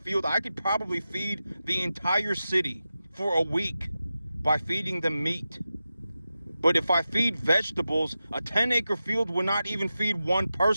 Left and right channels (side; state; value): both; inverted; correlation -0.93